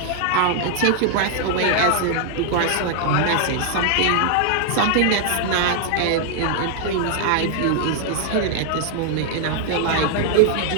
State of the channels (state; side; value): different; both; correlation 0.00